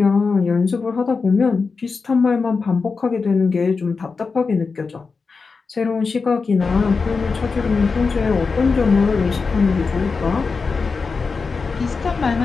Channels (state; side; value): quieter; right; 4.7 dB